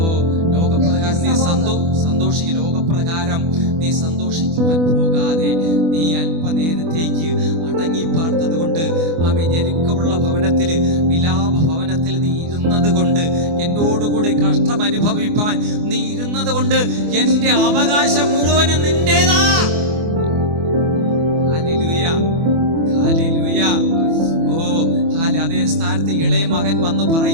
ലോകപ്രകാരം നീ സന്തോഷിക്കും. ലോകപ്രകാരം നീ സന്തോഷിക്കുവാൻ പോകാതെ നീ അല്പനേരത്തേക്ക് അടങ്ങി പാർത്തത് കൊണ്ട് ആമേൻ, ഞെരുക്കമുള്ള ഭവനത്തിൽ, വിലാപ ഭവനത്തിൽ നീ ഇരുന്നത് കൊണ്ട്, എന്നോടുകൂടി കഷ്ടം അനുഭവിപ്പാൻ നീ ഇരുന്നത് കൊണ്ട് എന്റെ അവകാശം മുഴുവനും നിന്റേതാ. Hallelujah, hallelujah. ഓ, അതേ സ്ഥാനത്ത് ഇളയ മകൻ വന്ന്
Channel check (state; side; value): late; left; 24 ms